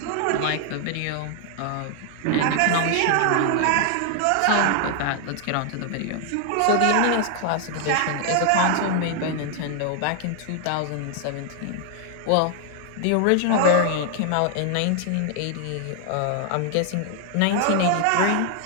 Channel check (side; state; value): both; different; correlation 0.00